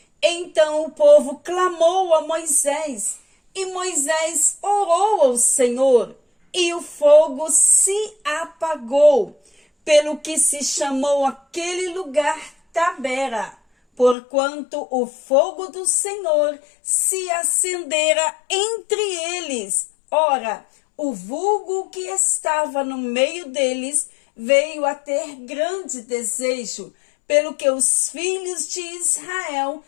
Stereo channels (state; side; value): drops out; right; at 14.2 s